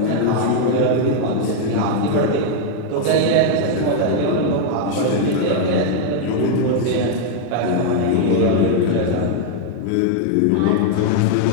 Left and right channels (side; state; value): both; different; correlation 0.00